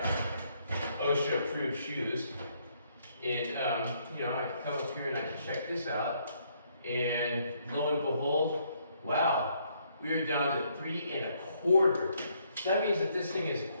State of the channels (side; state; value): both; inverted; correlation -0.71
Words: OSHA-approved shoes. And you know, I can come up here and I can check this out. And lo and behold, wow. We're down to 3.25. That means that this thing is a